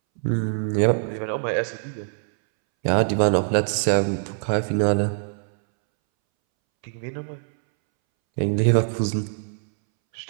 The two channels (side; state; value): left; silent; 63 dB below the other